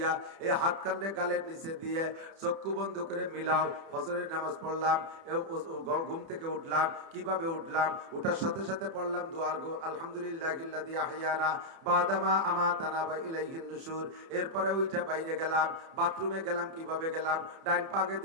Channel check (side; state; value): left; late; 30 ms